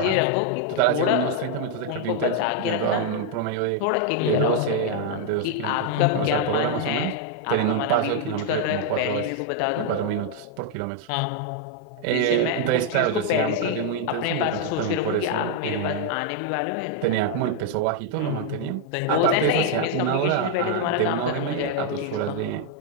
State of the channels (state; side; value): different; both; correlation 0.00